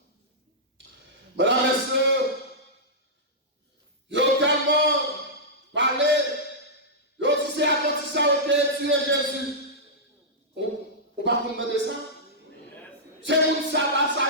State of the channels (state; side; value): normal; both; correlation -0.12